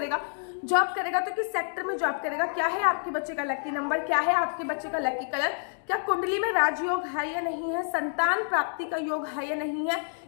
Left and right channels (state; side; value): silent; right; digital silence